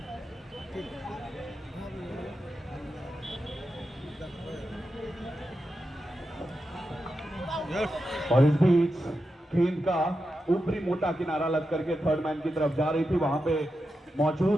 और इस बीच गेंद का ऊपरी मोटा किनारा लग करके थर्ड मैन की तरफ जा रही थी, वहां पे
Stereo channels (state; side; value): normal; both; correlation 0.89